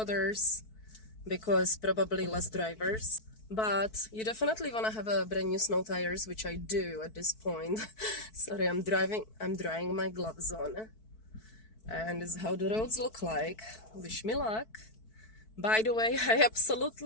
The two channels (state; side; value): late; right; 4.6 ms